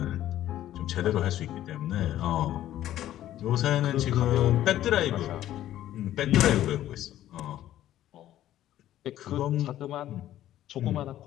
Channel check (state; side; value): quieter; right; 12.9 dB